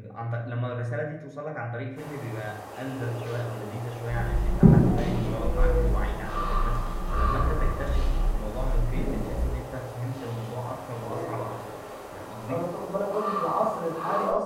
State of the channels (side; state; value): both; identical; correlation 1.00